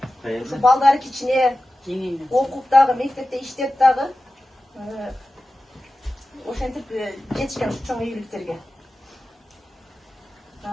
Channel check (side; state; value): both; normal; correlation 0.94